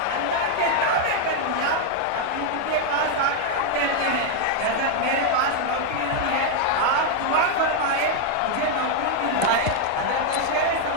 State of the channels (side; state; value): both; different; correlation 0.00